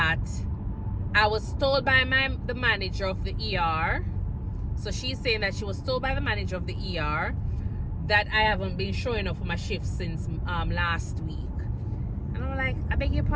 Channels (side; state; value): both; identical; correlation 1.00